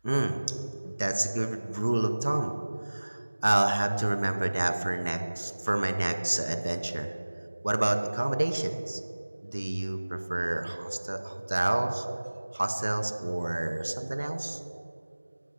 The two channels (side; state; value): both; inverted; correlation -1.00